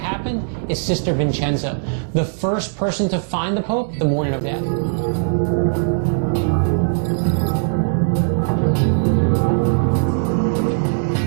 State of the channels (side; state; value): left; silent; 66 dB below the other